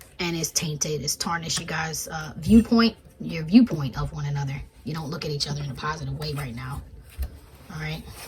And it's tainted, it's tarnished you guys' viewpoint, your viewpoint of one another. You don't look at each other in a positive way right now. All right.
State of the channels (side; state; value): both; identical; correlation 1.00